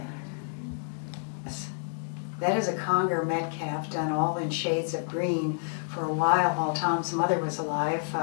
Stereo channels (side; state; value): right; silent; digital silence